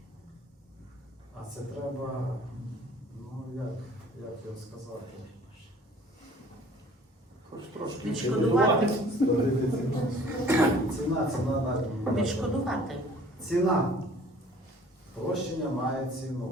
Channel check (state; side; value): normal; both; correlation 0.52